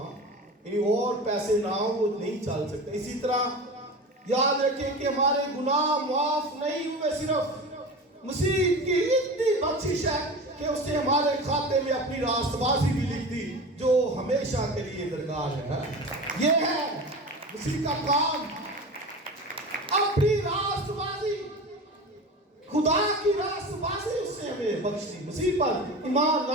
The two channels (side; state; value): both; normal; correlation 0.31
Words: یعنی اور پیسے نہ ہو، وہ نہیں چل سکتا. اسی طرح یاد رکھیں کہ ہمارے گناہ معاف نہیں ہوئے صرف مسیح کی اتنی بخشش ہے کہ اس نے ہمارے کھاتے میں اپنی راست بازی بھی لکھ دی جو ہمیشہ کے لیے درکار ہے. یہ ہے مسیح کا کام، اپنی راست بازی، خدا کی راست بازی اس نے ہمیں بخش دی مسیح پر ایمان